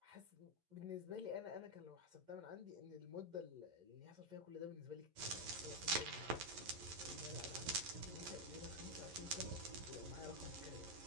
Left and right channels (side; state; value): left; late; 11 ms